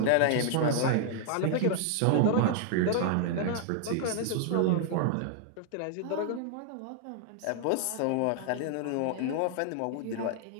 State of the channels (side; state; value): both; different; correlation 0.00